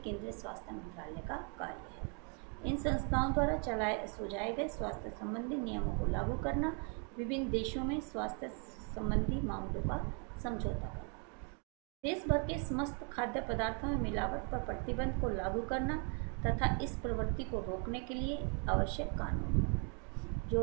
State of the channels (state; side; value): quieter; left; 37.7 dB